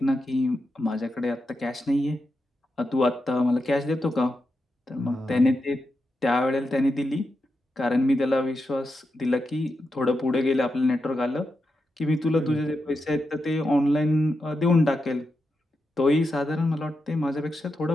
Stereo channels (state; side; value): normal; both; correlation 0.87